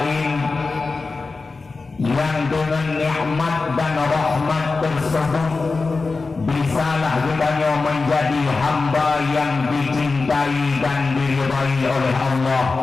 yang dengan nikmat dan rahmat tersebut bisalah kita menjadi hamba yang dicintai dan diridai oleh Allah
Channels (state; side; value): quieter; right; 4.0 dB